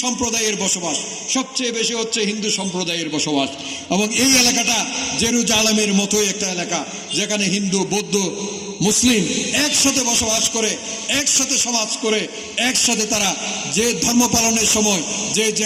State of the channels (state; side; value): identical; both; correlation 1.00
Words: সম্প্রদায়ের বসবাস। সবচেয়ে বেশি হচ্ছে হিন্দু সম্প্রদায়ের বসবাস। এবং এই এলাকাটা জেরুজালেমের মতোই একটা এলাকা, যেখানে হিন্দু, বৌদ্ধ মুসলিম একসাথে বসবাস করে, একসাথে সমাজ করে, একসাথে তারা যে ধর্ম পালনের সময় যে